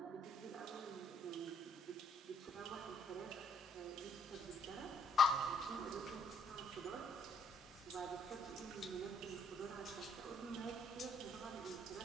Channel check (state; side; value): normal; both; correlation 0.66